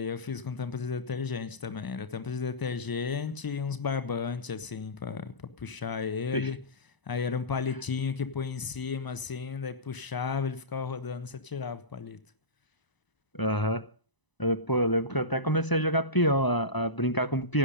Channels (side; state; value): right; late; 1.0 ms